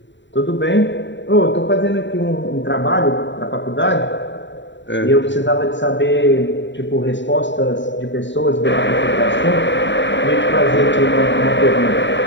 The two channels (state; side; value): late; right; 0.53 ms